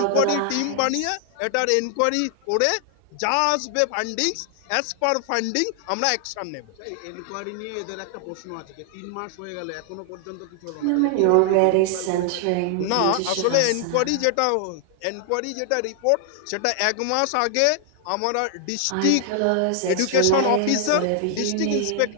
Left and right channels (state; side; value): different; both; correlation 0.00